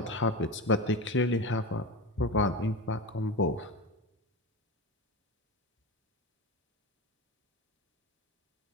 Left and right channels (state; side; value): normal; both; correlation 0.23